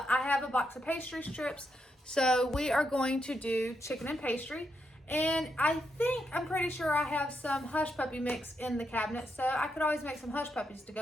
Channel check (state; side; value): normal; both; correlation 0.81